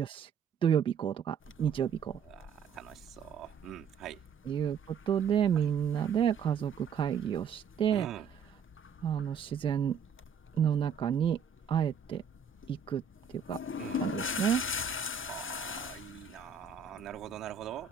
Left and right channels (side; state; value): left; quieter; 6.8 dB